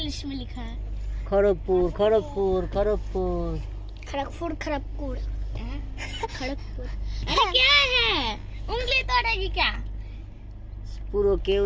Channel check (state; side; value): identical; both; correlation 1.00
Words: में लिखा है खड़गपुर खड़गपुर खड़गपुर खड़गपुर खड़गपुर खड़गपुर। अरे क्या है, उंगली तोड़ेगी क्या? पूरा क्यों